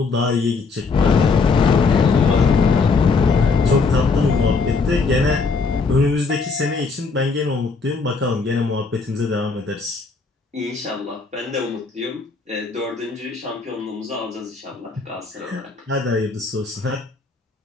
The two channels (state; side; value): quieter; right; 4.4 dB